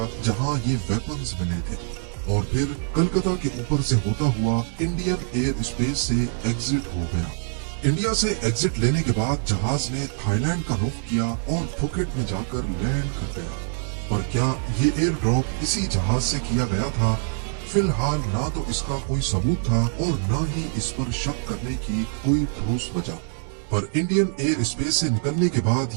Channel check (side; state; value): left; silent; 62 dB below the other